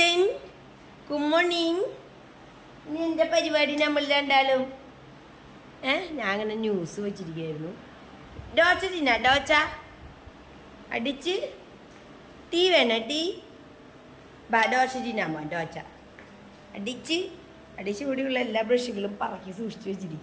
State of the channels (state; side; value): identical; both; correlation 1.00